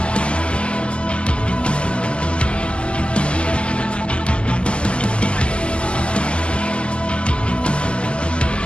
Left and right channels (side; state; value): right; late; 0.052 ms